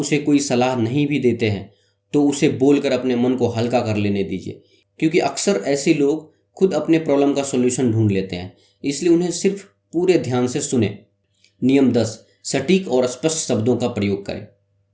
कोई सलाह नहीं भी देते हैं तो उसे बोलकर अपने मन को हल्का कर लेने दीजिए, क्योंकि अक्सर ऐसे लोग खुद अपने प्रॉब्लम का सॉल्यूशन ढूंढ लेते हैं। इसलिए उन्हें सिर्फ पूरे ध्यान से सुने। नियम 10, सटीक और स्पष्ट शब्दों का प्रयोग करें।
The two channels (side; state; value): both; identical; correlation 1.00